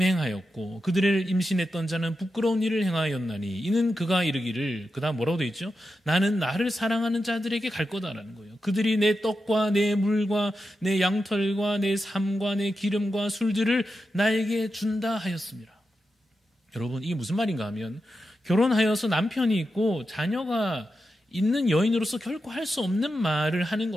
그들을 임신했던 자는 부끄러운 일을 행하였나니 이는 그가 이르기를, 그 다음 뭐라고 되어 있죠? 나는 나를 사랑하는 자들에게 갈 거다라는 거예요. 그들이 내 떡과 내 물과 내 양털과 내 삶과 내 기름과 술들을 나에게 준다 하였습니다. 여러분, 이게 무슨 말인가 하면 결혼하여서 남편이 있고 자녀가 있는 여인으로서 결코 할 수 없는 말을 하는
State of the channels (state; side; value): normal; both; correlation 0.89